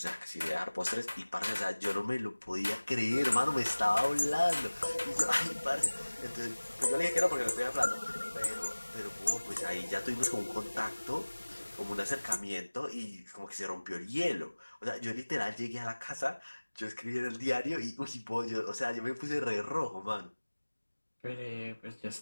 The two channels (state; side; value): inverted; both; correlation -1.00